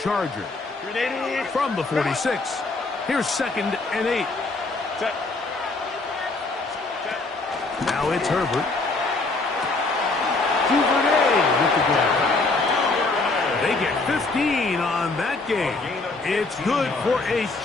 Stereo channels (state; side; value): quieter; right; 3.5 dB